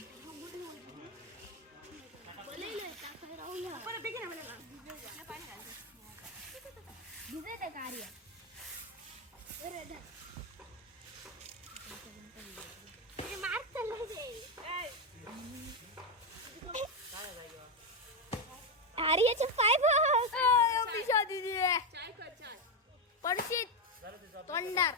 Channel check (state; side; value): normal; both; correlation 0.08